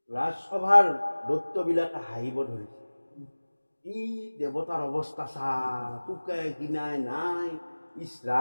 ৰাজসভাৰ দৈত্যবিলাকে হাঁহিব ধৰিছে। ই দেৱতাৰ অৱস্থা চা, পোকে কিনাই নাই, ইছ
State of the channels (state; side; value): inverted; both; correlation -1.00